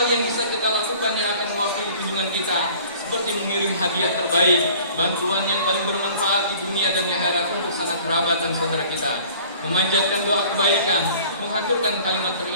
yang bisa kita lakukan yang akan mewakili kunjungan kita, seperti mengirim hadiah terbaik, bantuan yang paling bermanfaat di dunia dan di akhirat untuk sanak kerabat dan saudara kita, memanjatkan doa kebaikan, mengaturkan kalimat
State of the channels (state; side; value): inverted; both; correlation -0.49